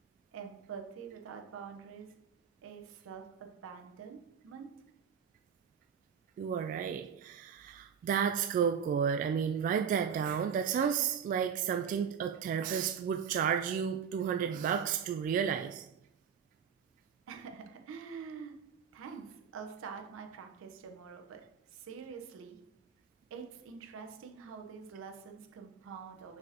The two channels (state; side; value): quieter; left; 7.4 dB